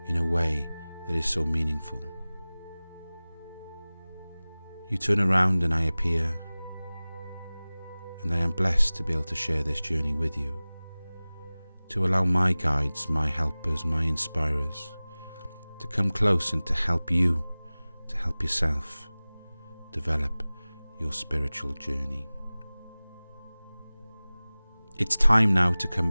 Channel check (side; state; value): both; inverted; correlation -0.99